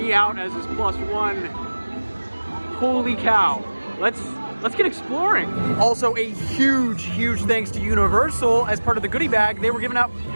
out as his +1. Holy cow. Let's get exploring. Also a huge thanks to Universal as part of the goodie bag. They were giving out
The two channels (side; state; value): both; inverted; correlation -1.00